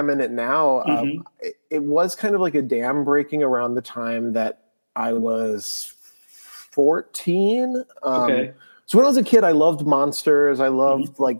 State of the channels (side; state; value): both; inverted; correlation -1.00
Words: in it now, it was kind of like a dam breaking around the time that I was 14. Okay. So when I was a kid, I loved monsters. I loved